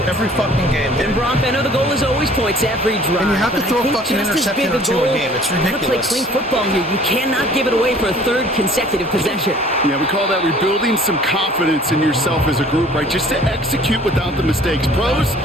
Every fucking game. And Brock, I know the goal is always points every drive. And you have to but throw I a think fucking just as interception big or two a goal, game. It's you gotta play ridiculous. clean football here. You cannot give it away for a 3rd consecutive possession. Yeah, we call that rebuilding some confidence in yourself as a group, right? Just to execute without the mistakes. Pros,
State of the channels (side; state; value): both; normal; correlation 0.52